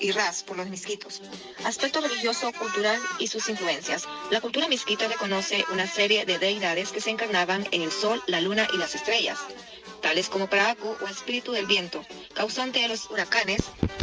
Ras por los misquitos. Aspecto religioso, cultural y sus influencias. La cultura misquita reconoce una serie de deidades que se encarnaban en el sol, la luna y las estrellas, tales como Paracu o espíritu del viento, causante de los huracanes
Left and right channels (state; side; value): identical; both; correlation 1.00